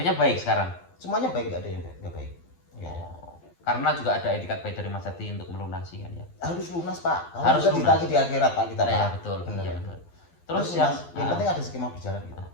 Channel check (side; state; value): right; late; 12 ms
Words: baik sekarang. Semuanya baik, nggak ada yang nggak baik. Karena juga ada etikat baik dari Mas Jati untuk melunasi kan ya. Harus lunas pak. Harus lunas. Ditagih di akhirat pak kita pak. Ya betul. Benar. Ya, betul. Terus yang penting ada skema berjalan gitu.